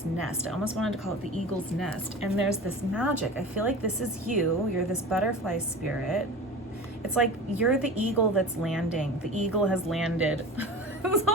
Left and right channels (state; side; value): normal; both; correlation 0.34